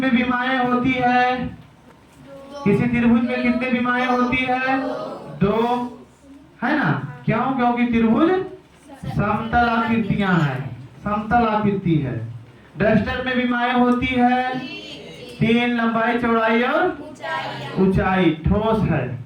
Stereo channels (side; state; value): both; identical; correlation 1.00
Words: विमाएं होती है। किसी त्रिभुज में कितने विमाएं होती है? 2, है ना? क्यों? क्योंकि त्रिभुज समतल आकृतियां हैं, समतल आकृति है। डस्टर में विमाएं होती है 3, लंबाई चौड़ाई और ऊंचाई, ठोस है।